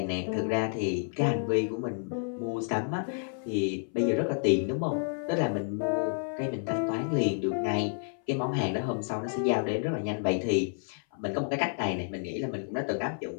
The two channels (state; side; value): silent; right; 58 dB below the other